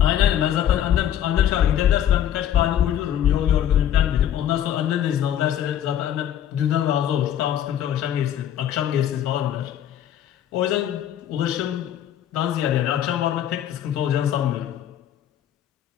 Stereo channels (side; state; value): right; quieter; 10.5 dB